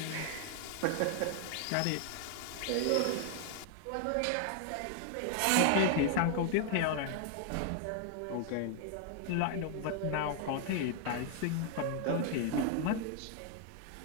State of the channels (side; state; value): both; different; correlation 0.00